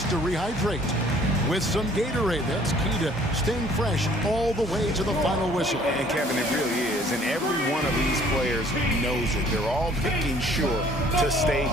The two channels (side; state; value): both; normal; correlation 0.56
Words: to rehydrate with some Gatorade. That's key to staying fresh all the way to the final whistle. And Kevin, it really is. And every one of these players knows it. They're all making sure to stay